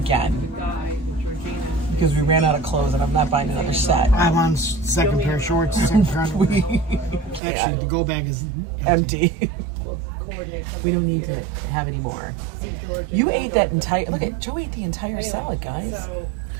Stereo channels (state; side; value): drops out; left; at 7.4 s